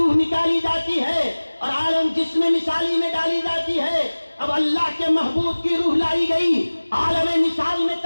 نکالی جاتی ہے اور عالم جسم مثالی میں ڈالی جاتی ہے. اب اللہ کے محبوب کی روح لائی گئی، عالم مثال میں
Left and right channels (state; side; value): inverted; both; correlation -1.00